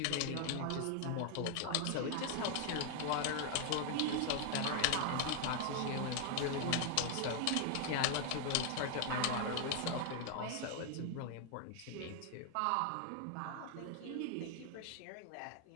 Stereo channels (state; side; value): different; both; correlation 0.00